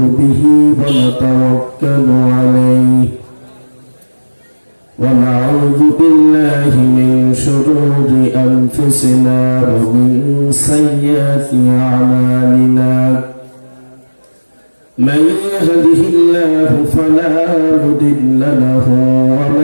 به ونتوكل عليه ونعوذ بالله من شرور أنفسنا ومن سيئات أعمالنا من يهده الله فلا مضل له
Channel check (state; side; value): inverted; both; correlation -1.00